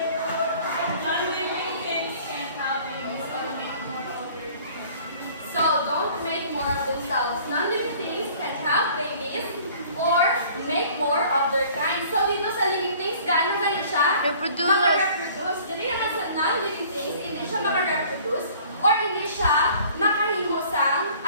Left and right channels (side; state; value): both; inverted; correlation -0.52